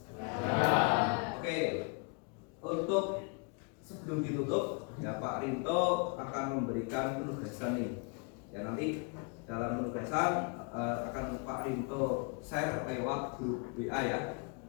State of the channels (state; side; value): quieter; right; 35.1 dB